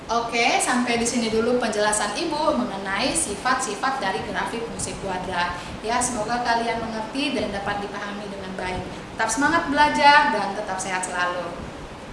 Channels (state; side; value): identical; both; correlation 1.00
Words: Oke, sampai di sini dulu penjelasan Ibu mengenai sifat-sifat dari grafik fungsi kuadrat, ya. Semoga kalian mengerti dan dapat dipahami dengan baik. Tetap semangat belajar dan tetap sehat selalu.